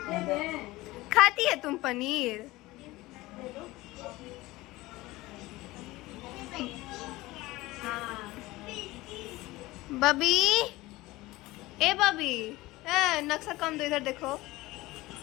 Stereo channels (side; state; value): right; quieter; 19.4 dB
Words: खाती है तुम पनीर? बबी, ए बबी, नक्शा कम दो, इधर देखो।